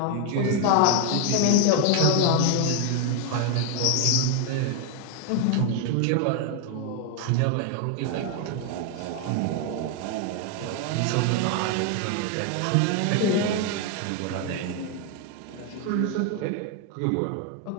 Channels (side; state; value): both; different; correlation 0.01